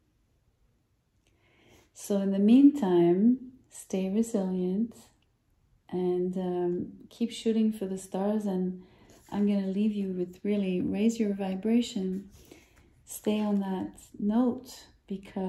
So in the meantime, stay resilient and keep shooting for the stars. And I'm going to leave you with really raise your vibration. Stay on that note,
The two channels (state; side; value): identical; both; correlation 1.00